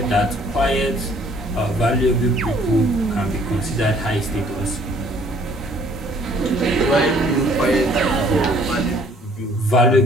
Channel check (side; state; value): both; normal; correlation 0.59